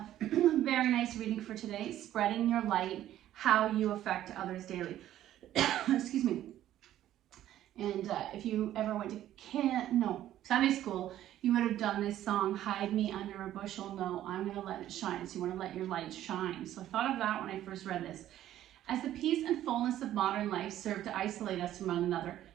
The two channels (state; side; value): quieter; left; 12.6 dB